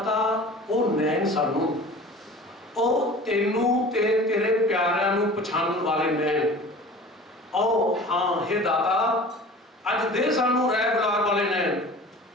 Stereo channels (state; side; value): normal; both; correlation 0.41